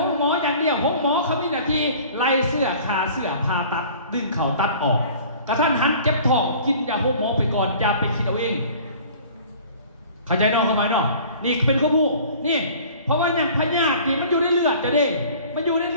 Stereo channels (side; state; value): both; inverted; correlation -0.47